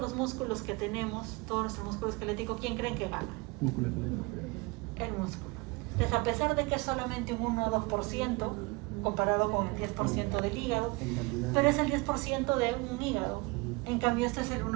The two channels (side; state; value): left; quieter; 25.7 dB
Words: músculos que tenemos, todo nuestro músculo esquelético, ¿quién creen que gana? El músculo. Entonces, a pesar de que es solamente un 1 o 2% comparado con el 10% del hígado, pero es el 10% de un hígado. En cambio, este es el